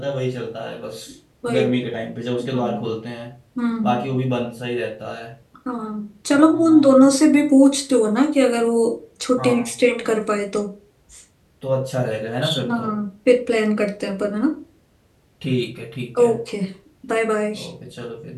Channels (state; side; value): identical; both; correlation 1.00